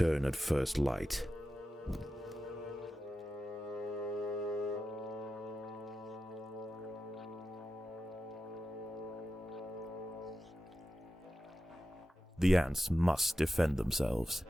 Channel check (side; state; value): both; normal; correlation 0.92